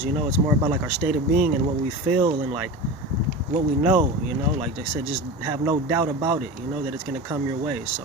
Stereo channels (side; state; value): both; normal; correlation 0.28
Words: It's more about like our state of being and what we feel and like what we know, like I said, just have no doubt about it, that it's gonna come your way. So